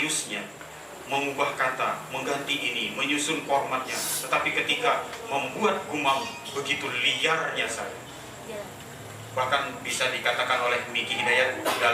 mengubah kata, mengganti ini, menyusun formatnya. Tetapi ketika membuat gumam begitu liarnya saya. Bahkan bisa dikatakan oleh Miki Hidayat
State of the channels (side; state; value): both; identical; correlation 1.00